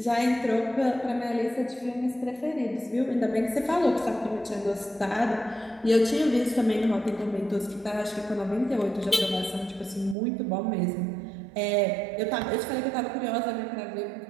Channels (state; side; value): drops out; left; at 10.2 s